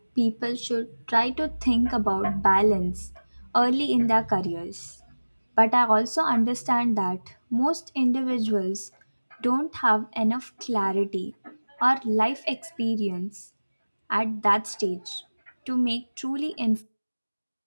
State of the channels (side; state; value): both; inverted; correlation -1.00